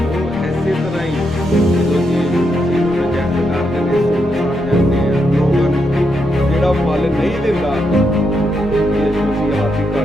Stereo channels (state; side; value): normal; both; correlation 0.81